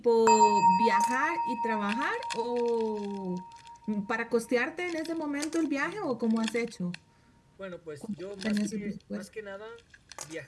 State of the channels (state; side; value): identical; both; correlation 1.00